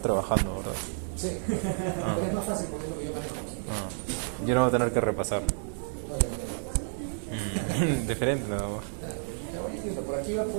¿verdad? Sí. Pero es más fácil porque es lo que yo manejo. Ah. Yo no voy a tener que repasar. Diferente nada más. Por aquí va a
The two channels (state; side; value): silent; left; digital silence